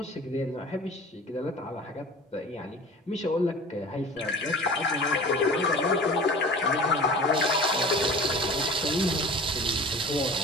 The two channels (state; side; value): normal; both; correlation 0.40